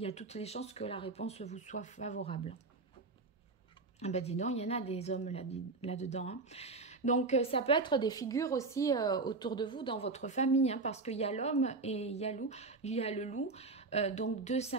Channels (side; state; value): left; quieter; 3.8 dB